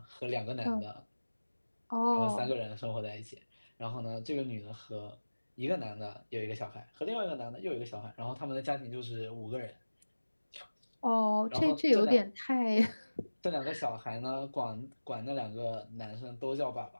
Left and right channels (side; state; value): both; inverted; correlation -1.00